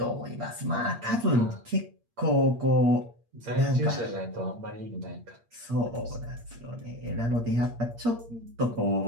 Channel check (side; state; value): left; late; 8.6 ms